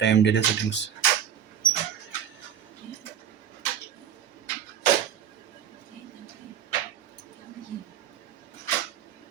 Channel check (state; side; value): quieter; left; 9.1 dB